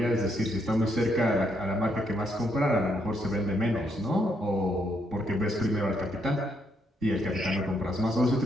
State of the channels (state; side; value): normal; both; correlation 0.75